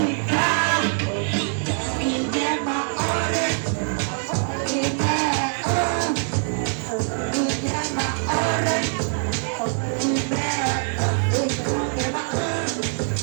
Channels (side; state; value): left; silent; 63 dB below the other